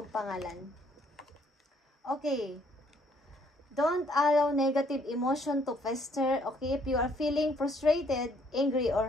pangalan. Okay. Don't allow negative emotion to fester. Okay, if you are feeling frustrated, angry,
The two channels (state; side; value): normal; both; correlation 0.66